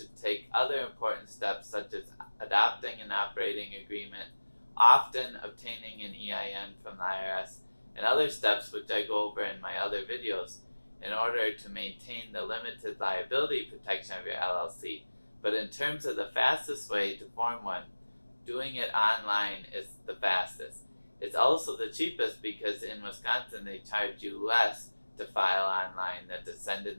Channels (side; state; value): both; inverted; correlation -1.00